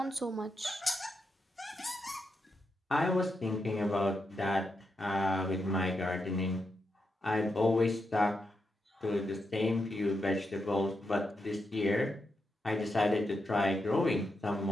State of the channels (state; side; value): normal; both; correlation 0.85